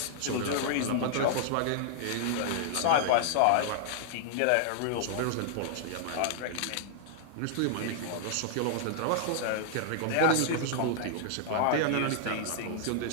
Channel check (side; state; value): both; different; correlation -0.01